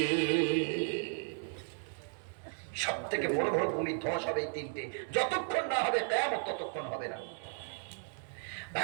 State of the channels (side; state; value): left; silent; 55 dB below the other